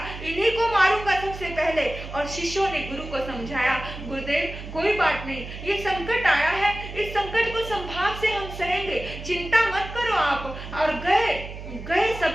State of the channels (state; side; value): noise; right; hum, 11 dB below the sound